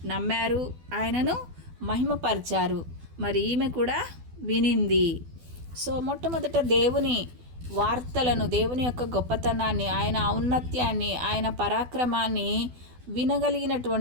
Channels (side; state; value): left; late; 12 ms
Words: నమ్మారు, ఆయనను మహిమపరిచారు. మరి ఈమె కూడా వినింది. సో మొట్టమొదట దేవుని వార్తలను, దేవుని యొక్క గొప్పతనాన్ని, ఆయన ఔన్నత్యాన్ని, ఆయన పరాక్రమాన్ని